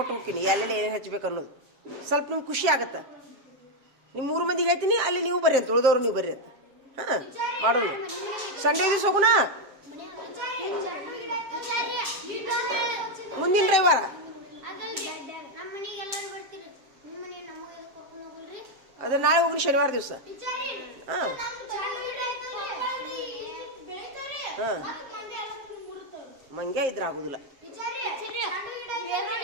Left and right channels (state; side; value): late; left; 7.5 ms